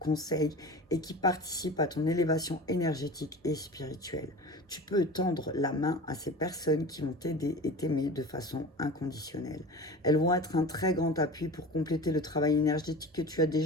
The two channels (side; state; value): both; normal; correlation 0.34